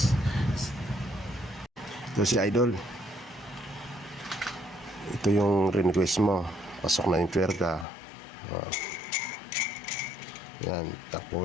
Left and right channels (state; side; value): drops out; right; at 7.9 s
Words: Ito si idol. Ito yung request mo. Pasok na yung twerka. Yan.